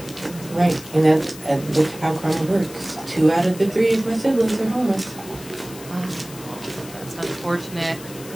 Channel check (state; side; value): noise; left; hiss, 16 dB below the sound